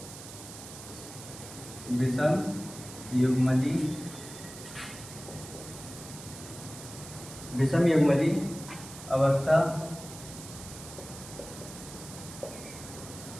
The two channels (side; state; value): right; noise; hiss, 14 dB below the sound